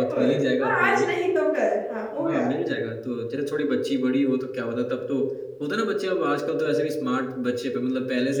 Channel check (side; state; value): both; identical; correlation 1.00